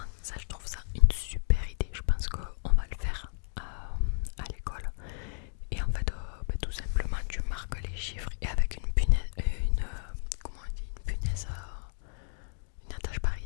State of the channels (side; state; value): right; silent; 56 dB below the other